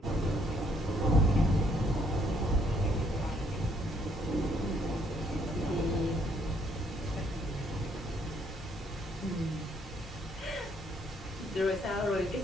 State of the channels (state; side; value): normal; both; correlation 0.68